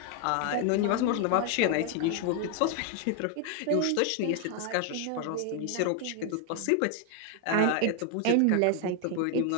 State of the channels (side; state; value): both; different; correlation 0.00